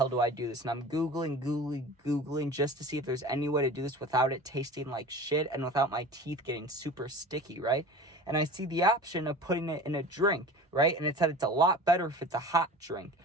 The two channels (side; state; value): both; normal; correlation 0.38